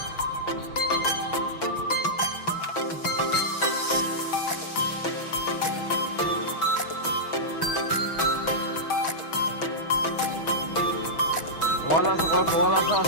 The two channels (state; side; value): late; right; 6.2 ms